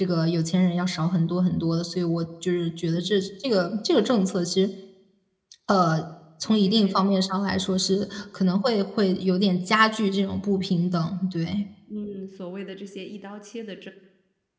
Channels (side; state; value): both; identical; correlation 1.00